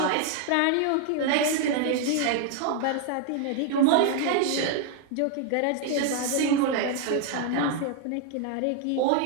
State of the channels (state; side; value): different; both; correlation 0.00